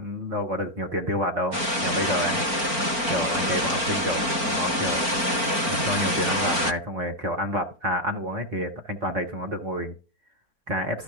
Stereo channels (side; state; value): left; late; 4.4 ms